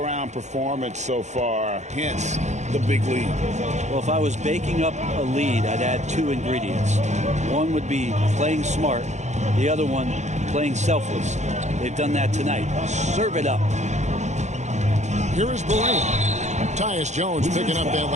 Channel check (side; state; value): left; late; 0.33 ms